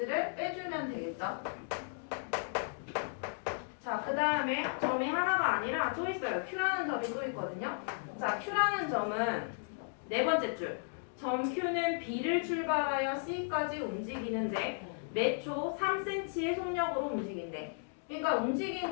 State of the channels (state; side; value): silent; right; digital silence